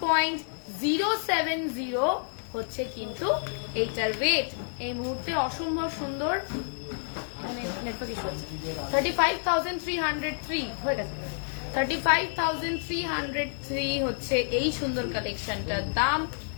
হচ্ছে কিন্তু এইটার ওয়েট। এই মুহূর্তে অসম্ভব সুন্দর, মানে নেটওয়ার্ক ইস্যু আছে। 35,303 হয়ে গেছে। 35,303 হচ্ছে এই সুন্দর কালেকশনটার দাম।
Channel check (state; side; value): silent; right; 59 dB below the other